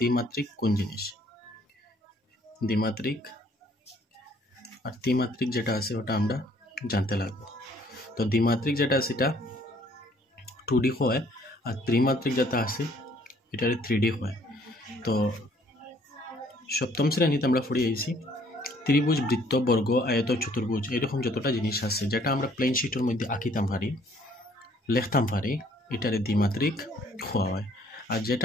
কোন জিনিস। দ্বিমাত্রিক আর ত্রিমাত্রিক যেটা আছে ওটা আমরা জানতে লাগবো। তো দ্বিমাত্রিক যেটা আছে এটা 2D হয় আর ত্রিমাত্রিক যেটা আছে এটা 3D হয়। তো সপ্তম শ্রেণীতে আমরা পড়ে আইছি ত্রিভুজ, বৃত্ত, বর্গ, আয়ত, চতুর্ভুজ এরকম যতটা জিনিস আছে যেটা আমরা প্লেন শিটের মধ্যে আঁকিতাম পারি, লিখতাম পারি, এটারে দ্বিমাত্রিক হওয়া হয়। আর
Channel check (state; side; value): normal; both; correlation 0.61